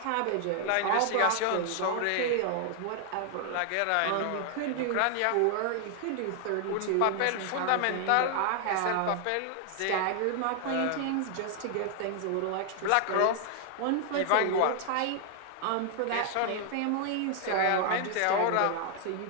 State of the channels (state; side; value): different; both; correlation 0.00